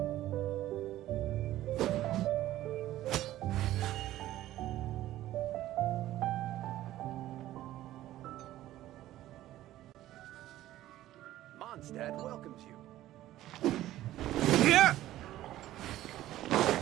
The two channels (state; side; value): quieter; left; 14.4 dB